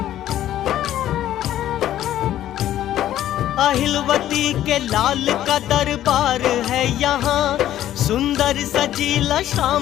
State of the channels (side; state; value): right; quieter; 12.4 dB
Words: अहिलवती के लाल का दरबार है यहाँ, सुंदर सजीला